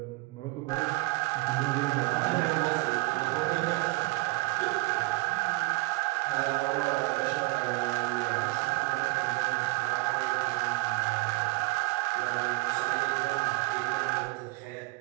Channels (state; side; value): quieter; left; 23.6 dB